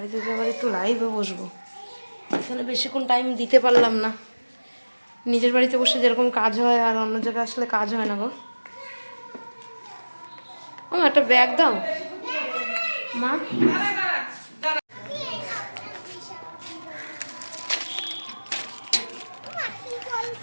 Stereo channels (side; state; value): both; inverted; correlation -1.00